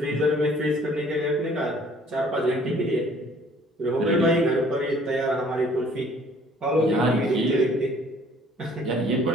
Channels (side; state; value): both; normal; correlation 0.56